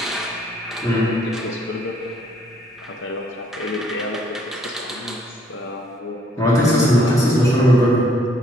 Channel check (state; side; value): normal; both; correlation 0.66